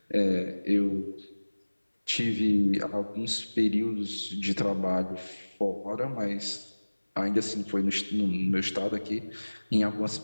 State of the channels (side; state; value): both; inverted; correlation -1.00